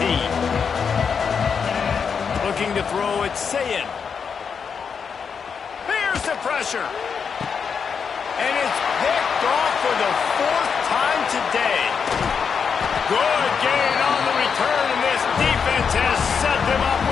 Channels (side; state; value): right; quieter; 6.3 dB